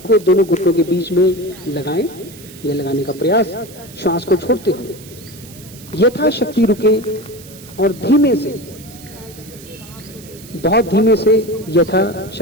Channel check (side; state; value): right; noise; hiss, 19 dB below the sound